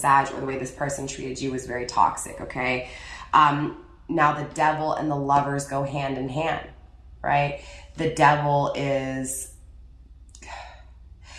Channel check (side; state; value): both; identical; correlation 1.00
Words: or the way this person treated you was very toxic, okay? Now the Devil and the Lovers go hand in hand, right? The Devil is,